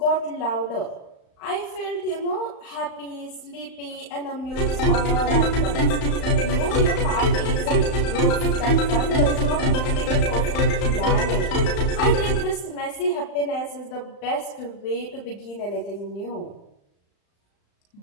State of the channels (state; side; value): late; right; 35 ms